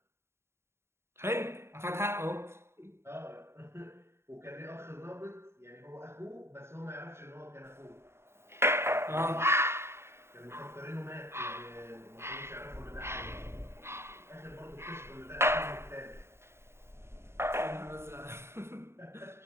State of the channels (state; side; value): late; left; 0.12 ms